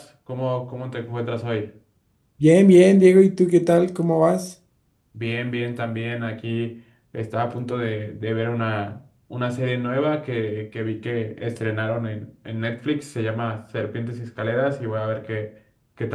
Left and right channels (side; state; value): both; identical; correlation 1.00